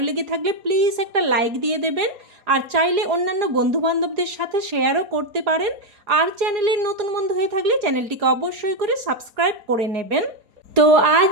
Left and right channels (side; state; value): left; late; 4.8 ms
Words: লেগে থাকলে প্লিজ একটা লাইক দিয়ে দেবেন। আর চাইলে অন্যান্য বন্ধুবান্ধবদের সাথে শেয়ারও করতে পারেন। আর চ্যানেলের নতুন বন্ধু হয়ে থাকলে চ্যানেলটিকে অবশ্যই করে সাবস্ক্রাইব করে নেবেন। তো